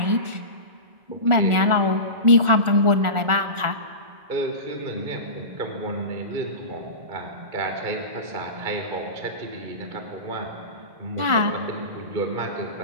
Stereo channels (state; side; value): late; left; 1.4 ms